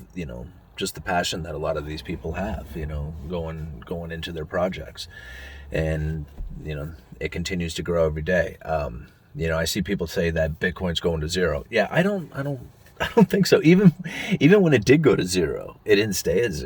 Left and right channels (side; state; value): both; identical; correlation 1.00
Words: just the passion that a lot of these people have, going into their projects. And, it continues to grow every day. I see people say that Bitcoin's going to zero. Yeah, I don't think so. Even when it did go to zero, it didn't stay at